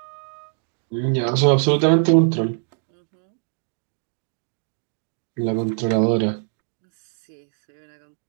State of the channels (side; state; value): left; silent; digital silence